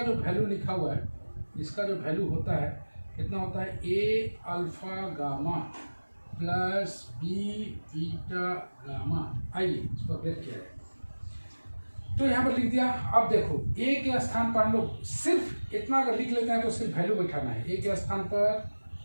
जो वैल्यू लिखा हुआ है, इसका जो वैल्यू होता है कितना होता है, A alpha gamma plus B beta gamma. आइए इस पर ब्रेक किया जाए, तो यहाँ पर लिख दिया। अब देखो ए के स्थान पर हम लोग सिर्फ इतना अगर लिख लेते हैं तो सिर्फ वैल्यू बैठाना है। ए के स्थान पर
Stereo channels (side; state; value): both; inverted; correlation -1.00